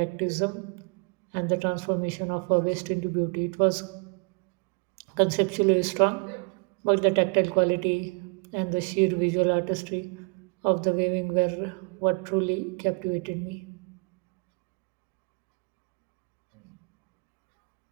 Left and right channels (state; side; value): quieter; left; 35.2 dB